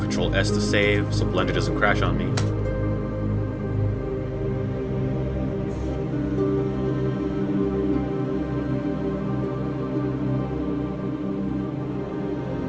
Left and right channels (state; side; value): identical; both; correlation 1.00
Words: Control S to save so Blender doesn't crash on me.